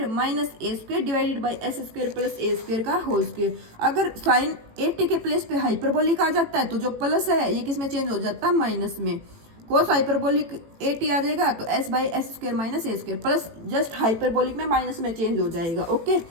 minus a² divided by s² plus a² का होल स्क्वायर। अगर साइन 80 के प्लेस पे हाइपरबोलिक आ जाता है तो जो प्लस है ये किस में चेंज हो जाता है, माइनस में। कोस हाइपरबोलिक 80 आ जाएगा तो s/s² minus a² plus just hyperbolic में माइनस में चेंज हो जाएगा। ओके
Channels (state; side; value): late; left; 18 ms